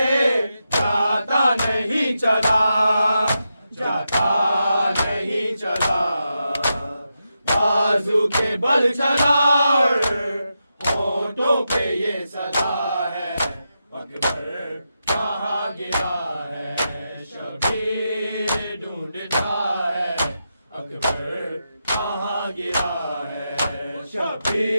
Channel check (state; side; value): inverted; both; correlation -0.87